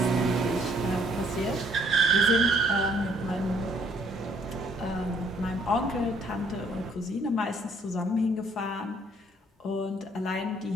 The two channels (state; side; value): normal; both; correlation 0.63